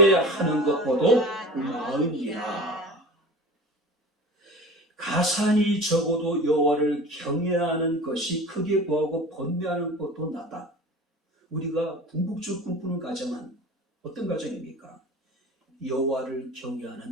것보다 나으니라. 가산이 적어도 여호와를 경외하는 것이 크게 부하고 번뇌하는 것도 낫다. 우리가 궁극적으로 꿈꾸는 가정은 어떤 가정입니까? 여호와를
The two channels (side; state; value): both; normal; correlation 0.36